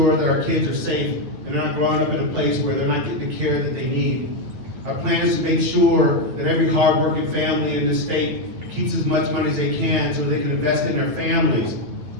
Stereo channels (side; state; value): left; late; 9.1 ms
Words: that our kids are safe and they're not growing up in a place where they're not getting the care that they need. Our plan is to make sure that every hardworking family in this state keeps as much money as they can so they can invest in their families.